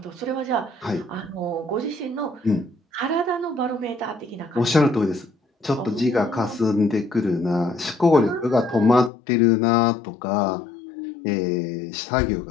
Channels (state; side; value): drops out; right; at 9.1 s